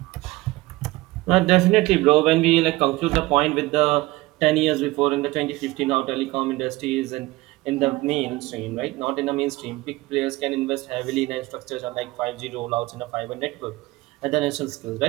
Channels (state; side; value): quieter; left; 20.0 dB